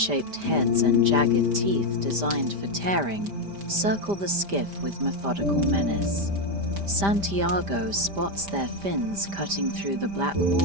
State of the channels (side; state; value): left; late; 5.1 ms